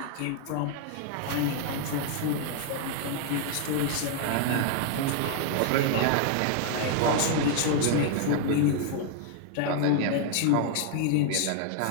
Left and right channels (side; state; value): both; different; correlation 0.00